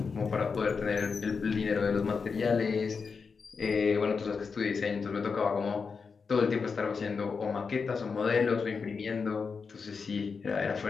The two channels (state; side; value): quieter; right; 5.2 dB